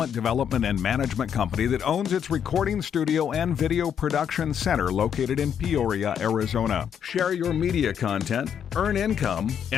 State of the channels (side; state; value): right; quieter; 8.4 dB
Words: development and management company that owns its recording studio and video production center located in Peoria, Arizona. Share your media content, earn income,